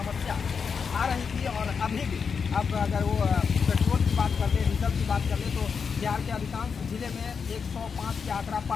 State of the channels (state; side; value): quieter; right; 6.0 dB